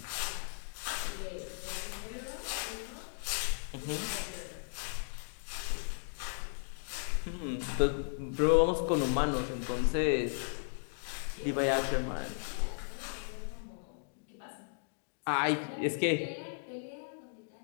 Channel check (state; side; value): silent; right; digital silence